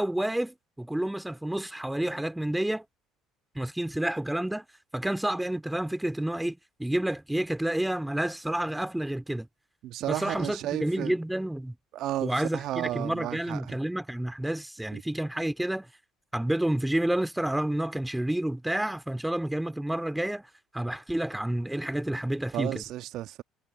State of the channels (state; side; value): normal; both; correlation 0.96